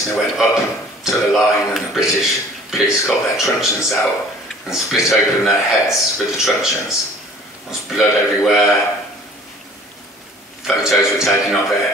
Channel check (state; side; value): normal; both; correlation 0.50